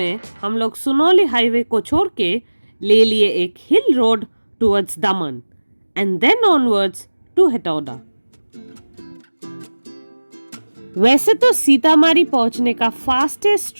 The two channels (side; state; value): both; inverted; correlation -1.00